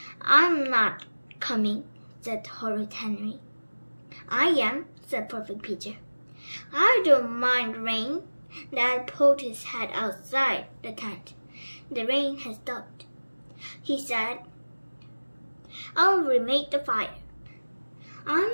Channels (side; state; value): both; inverted; correlation -1.00